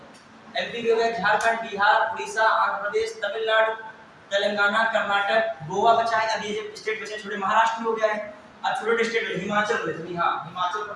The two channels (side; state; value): both; identical; correlation 1.00